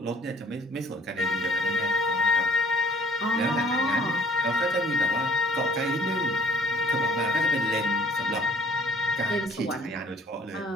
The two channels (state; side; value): normal; both; correlation 0.55